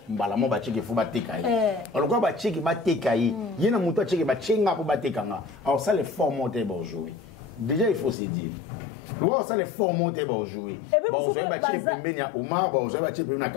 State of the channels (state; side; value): drops out; right; at 8.2 s